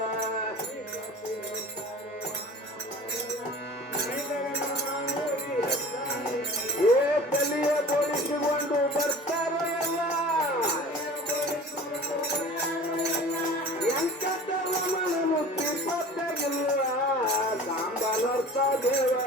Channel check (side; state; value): both; normal; correlation 0.41